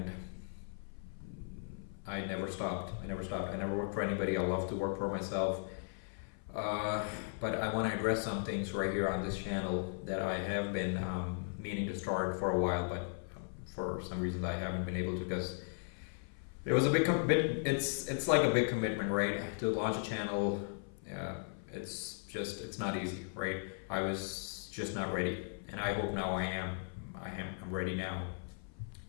I never stopped. I never worked for anybody. I love to work for myself. But I want to address some things right here on this channel that I have been meaning to start for a while, but for some reason I haven't been able to, because it was a big it's like a big commitment, right? To launch a channel. It's not easy, right? I was just not ready, and I hope now I am. I'm ready now.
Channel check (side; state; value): right; silent; 53 dB below the other